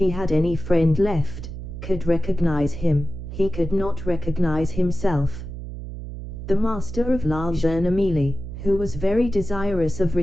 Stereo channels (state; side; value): noise; right; hum, 9 dB below the sound